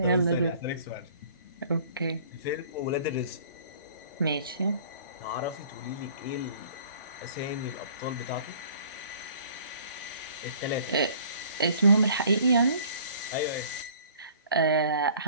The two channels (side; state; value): both; inverted; correlation -0.52